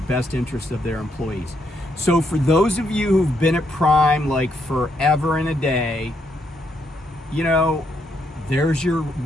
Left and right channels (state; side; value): normal; both; correlation 0.76